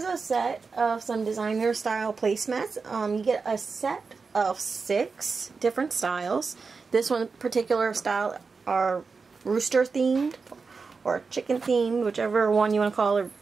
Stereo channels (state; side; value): quieter; left; 4.7 dB